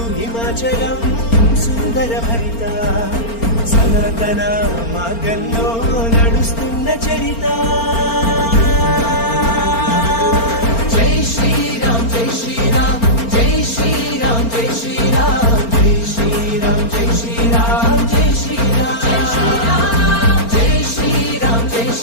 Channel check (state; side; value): late; right; 4.4 ms